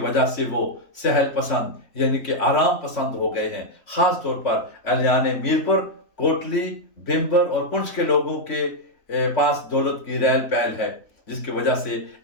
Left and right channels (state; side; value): late; right; 3.5 ms